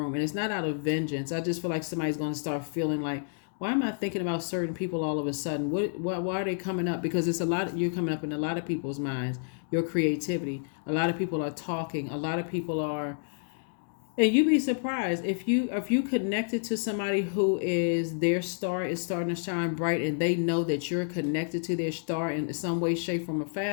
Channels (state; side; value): silent; right; digital silence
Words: And it's not out of vengeance. I just feel like somebody's going to start feeling like, why am I thinking about certain people all of a sudden? Why are they coming up? Because it's you're coming up in a lot of people's minds, your creativity. A lot of people are talking. A lot of people are. And you'd be surprised if you connected to somebody who is, their star is starting to shine bright, and they know that you're connected to their star in some way, shape, form, or